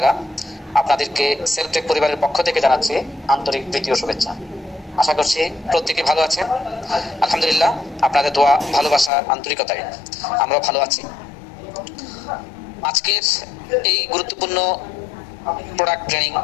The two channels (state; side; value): drops out; right; at 9.1 s